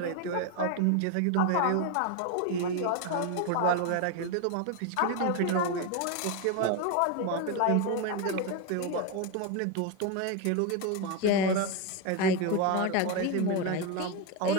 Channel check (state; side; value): different; both; correlation 0.02